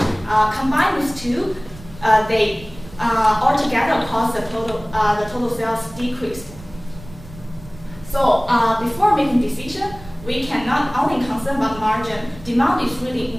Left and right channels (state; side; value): noise; right; rumble, 18 dB below the sound